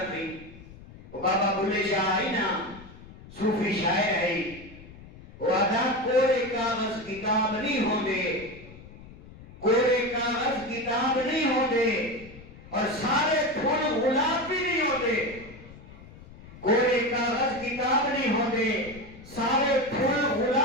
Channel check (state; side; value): noise; left; rumble, 18 dB below the sound